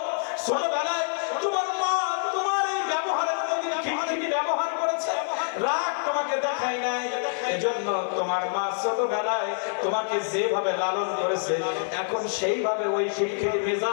ছোটবেলায় তোমার মা তোমার এই ব্যবহারের মধ্যে কি ব্যবহার করেছে? রাগ তোমাকে দেখায় নাই, এজন্য তোমার মা ছোটবেলায় তোমাকে যেভাবে লালন করেছে, এখন সেইভাবে ওই খিটখিটি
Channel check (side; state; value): right; silent; digital silence